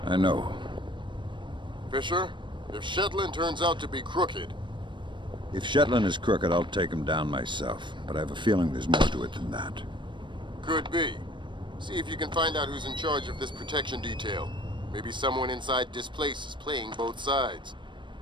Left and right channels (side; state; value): left; late; 0.23 ms